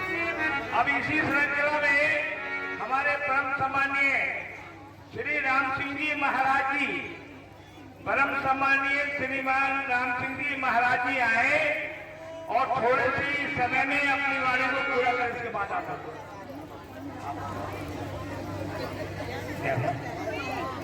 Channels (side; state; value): both; identical; correlation 1.00